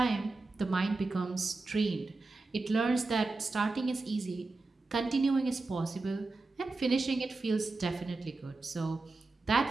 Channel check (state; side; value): quieter; left; 3.5 dB